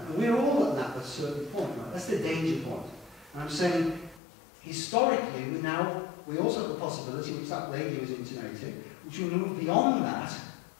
And we're all at that at a certain point, right? That's the danger point. And I'm saying, historically, we also have the possibility, which that lady was intimating, which we move beyond that,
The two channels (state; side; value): drops out; right; at 4.2 s